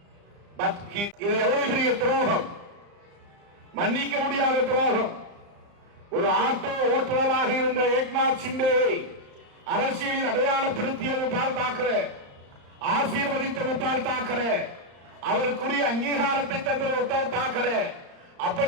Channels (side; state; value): left; late; 34 ms